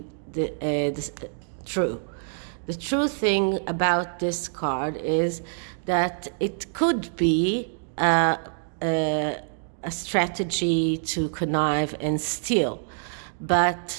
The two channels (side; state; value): left; silent; digital silence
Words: the true. The true thing about this card is that it could be a strategy to connive and steal,